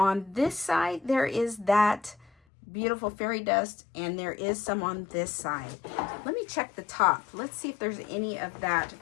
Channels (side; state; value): right; drops out; at 2.3 s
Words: this side, there is that beautiful fairy dust, and there is some on this side. Let me check the top. Let's see if there's any of that